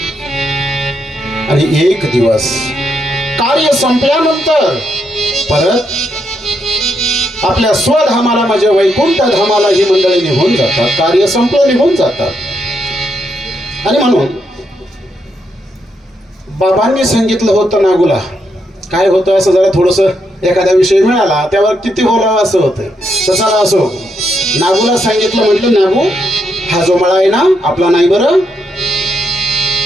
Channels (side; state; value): both; normal; correlation 0.79